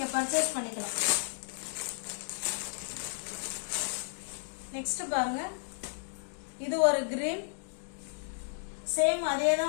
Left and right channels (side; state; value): right; silent; digital silence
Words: பர்ச்சேஸ் பண்ணிக்கலாம். நெக்ஸ்ட் பாருங்க, இது ஒரு கிரீன். சேம் அதே